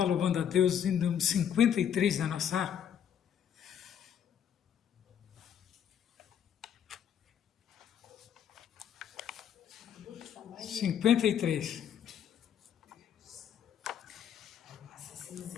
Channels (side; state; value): right; quieter; 8.9 dB